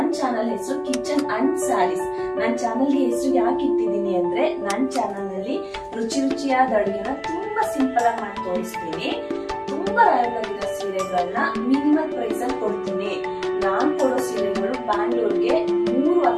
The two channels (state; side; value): identical; both; correlation 1.00